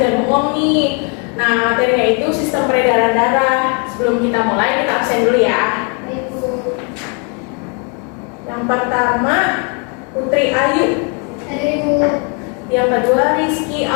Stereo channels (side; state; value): right; quieter; 36.7 dB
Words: bohong nih. Nah, materinya itu sistem peredaran darah. Sebelum kita mulai, kita absen dulu ya. Baik, Bu. Yang pertama, Putri Ayu. Hadir, Ibu. Yang kedua, Rizky